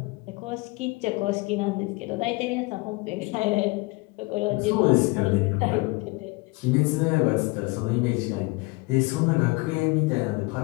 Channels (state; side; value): quieter; right; 25.4 dB